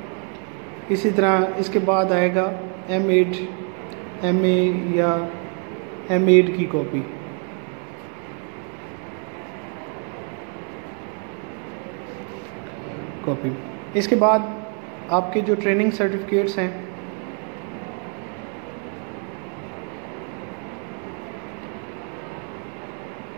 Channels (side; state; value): left; quieter; 39.2 dB